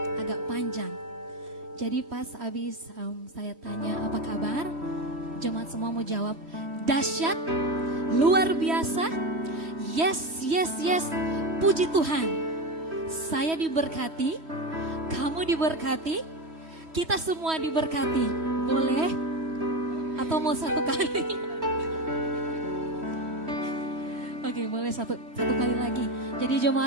agak panjang. Jadi pas habis saya tanya apa kabar, jemaat semua mau jawab dahsyat, luar biasa, yes, yes, yes. Puji Tuhan. Saya diberkati, kamu diberkati, kita semua diberkati. Boleh? Atau mau satu kali? Oke, boleh satu kali lagi. Jadi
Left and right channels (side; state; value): left; late; 3.1 ms